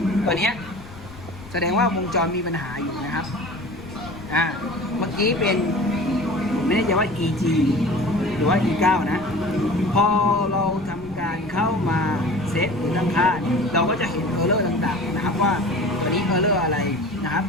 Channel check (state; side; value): noise; left; rumble, 18 dB below the sound